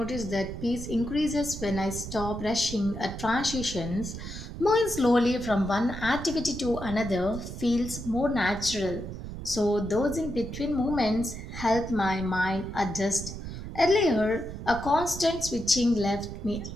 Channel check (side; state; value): right; noise; rumble, 9 dB below the sound